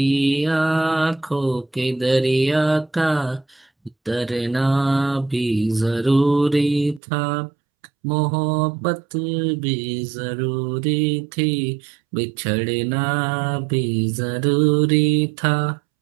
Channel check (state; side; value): drops out; left; at 7.0 s